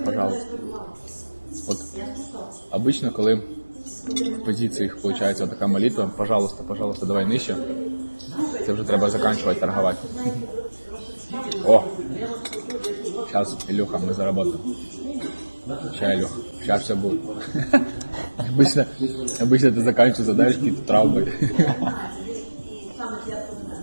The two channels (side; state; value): both; inverted; correlation -1.00